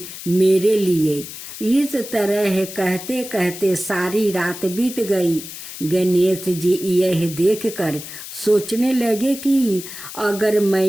मेरे लिए। इस तरह कहते कहते सारी रात बीत गई। गणेश जी यह देखकर सोचने लगे कि अगर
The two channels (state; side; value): noise; left; hiss, 11 dB below the sound